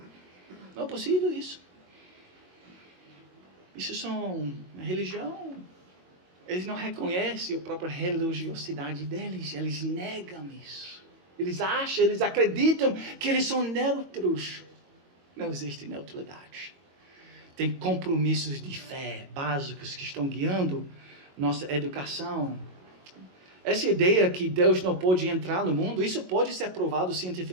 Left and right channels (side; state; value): left; late; 22 ms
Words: Não é possível isso. Isso são religião. Eles não reconhecem a própria religiosidade deles. Eles negam isso. Eles acham, eles acreditam que eles são neutros. Não existe neutralidade. Tem compromissos de fé básicos que estão guiando nossa educação. Essa ideia que Deus não pode entrar no mundo, isso pode ser provado